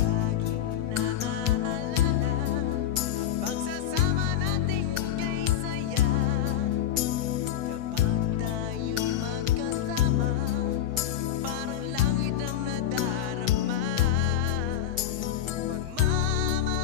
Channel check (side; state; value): right; quieter; 10.2 dB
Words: naaalala pagsasama nating kay saya. Kapag tayo'y magkasama, parang langit ang nadarama.